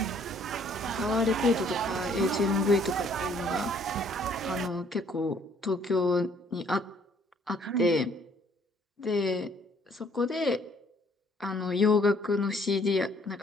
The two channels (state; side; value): normal; both; correlation 0.62